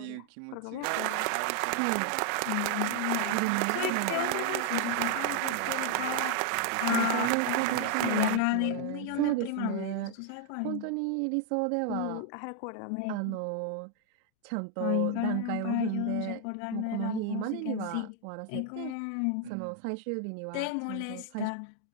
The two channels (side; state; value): both; different; correlation 0.00